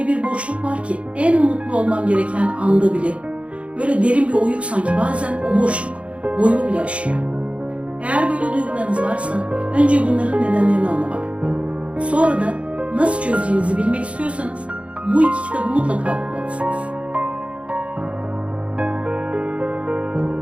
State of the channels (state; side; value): late; left; 0.062 ms